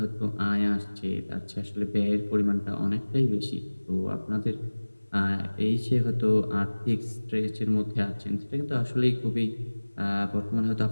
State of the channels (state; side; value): inverted; both; correlation -1.00